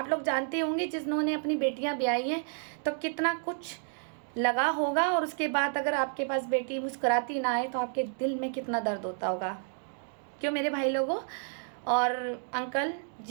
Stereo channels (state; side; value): silent; left; 57 dB below the other